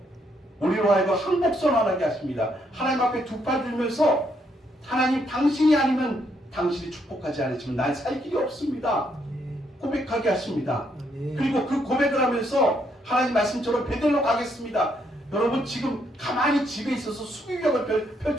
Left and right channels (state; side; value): normal; both; correlation 0.74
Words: 우리로 하여금 항복선언하게 하십니다. 하나님 앞에 두 팔 들면서 하나님 당신이 아니면 당신이 축복하지 않으시면 난 살 길이 없습니다. 고백하게 하십니다. 그리고 그 고백을 하면서 하나님 말씀처럼 베델로 가겠습니다. 여러분 지금 가만히 집에 있어서 수비벽을